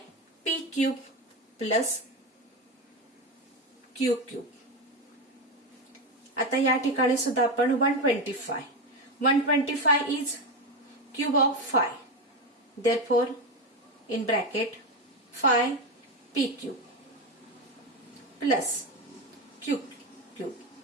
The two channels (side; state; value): both; normal; correlation 0.14